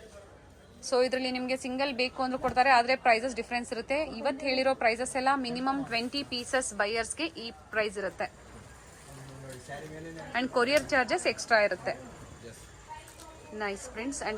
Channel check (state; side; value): identical; both; correlation 1.00